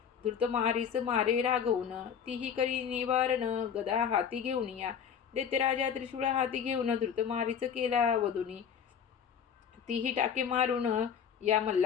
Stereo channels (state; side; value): quieter; right; 7.7 dB